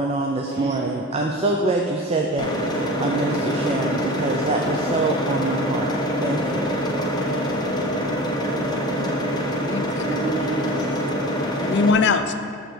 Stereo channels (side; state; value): both; normal; correlation 0.34